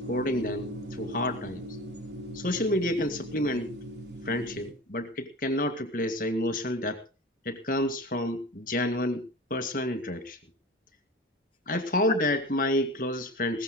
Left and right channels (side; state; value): both; normal; correlation 0.34